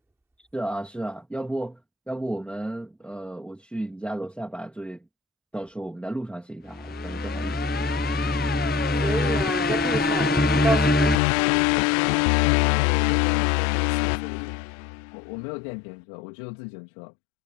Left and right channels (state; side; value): drops out; right; at 11.2 s